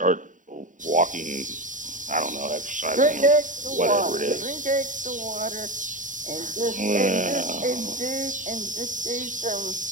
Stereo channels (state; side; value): late; left; 0.37 ms